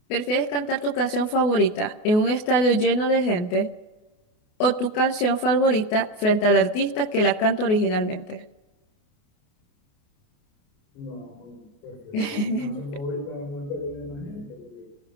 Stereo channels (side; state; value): right; late; 28 ms